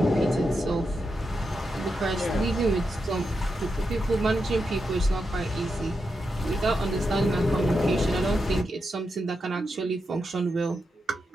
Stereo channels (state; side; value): normal; both; correlation 0.86